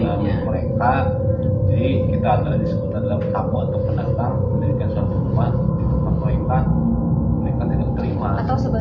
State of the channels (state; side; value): identical; both; correlation 1.00